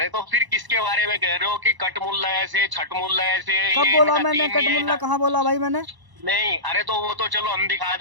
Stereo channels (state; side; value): late; left; 1.0 ms